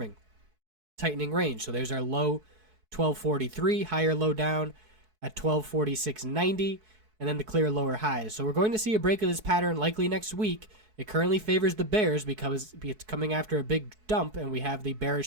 Tightening range. So there's our low 1243, higher low down at 1246.90, and then the clear lower highs. So we're going to see a break of this pattern likely next week. It currently favors the bears because it's coming after a big dump, and we have the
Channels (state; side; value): late; left; 4.6 ms